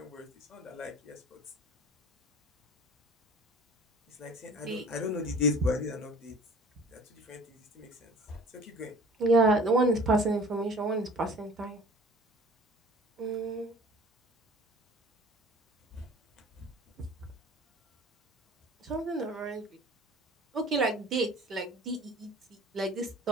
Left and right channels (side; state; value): both; normal; correlation 0.46